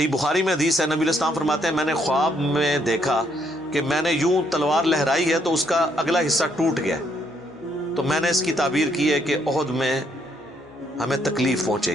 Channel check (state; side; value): normal; both; correlation 0.71